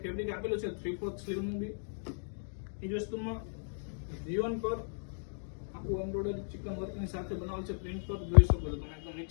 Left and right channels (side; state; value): right; silent; digital silence